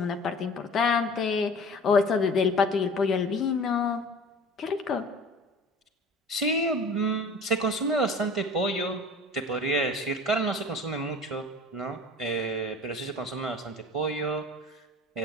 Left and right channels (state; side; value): normal; both; correlation 0.42